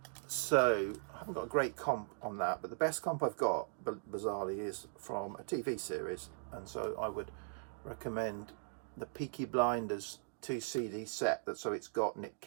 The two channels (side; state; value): left; silent; digital silence